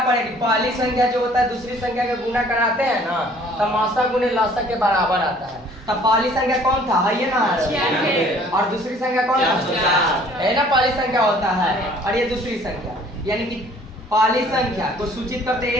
पहली संख्या जो होता है दूसरी संख्या का गुना कराते हैं ना, तो मासा गुने लसा के बराबर आता है। तब पहली संख्या कौन था, है ये ना, और दूसरी संख्या कौन था, है ना, पहली संख्या होता है और ये दूसरी संख्या। यानी कि पहली संख्या को सूचित करते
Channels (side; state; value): both; normal; correlation 0.55